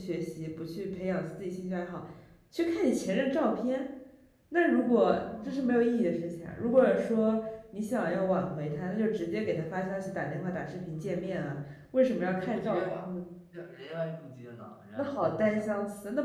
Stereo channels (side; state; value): both; identical; correlation 1.00